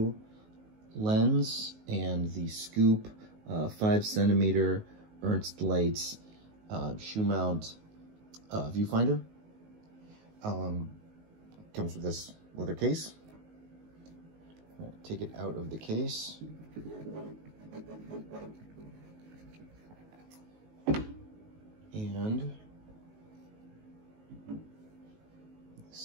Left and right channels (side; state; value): left; late; 19 ms